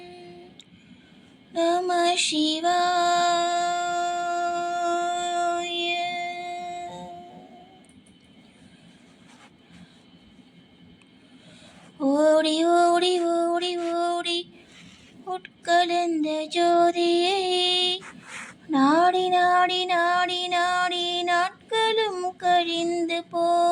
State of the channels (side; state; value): both; identical; correlation 1.00